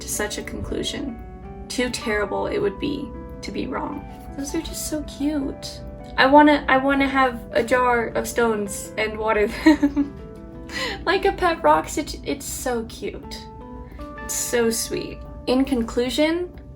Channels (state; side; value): identical; both; correlation 1.00